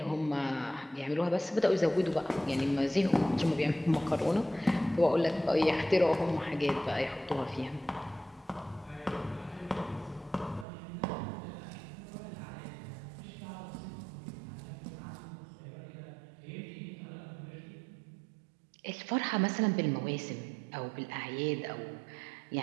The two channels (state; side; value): drops out; left; at 10.7 s